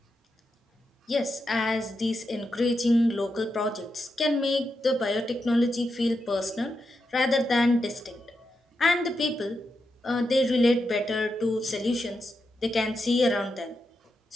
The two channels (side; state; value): both; normal; correlation 0.86